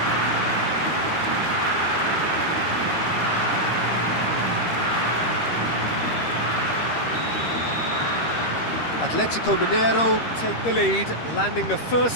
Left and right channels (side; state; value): right; late; 13 ms